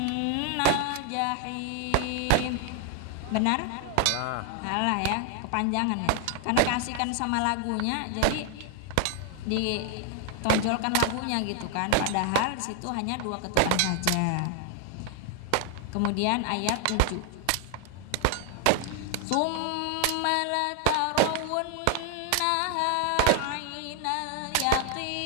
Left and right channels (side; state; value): both; different; correlation 0.00